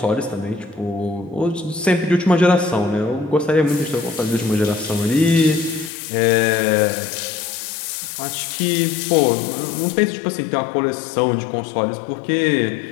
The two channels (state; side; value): drops out; right; at 5.9 s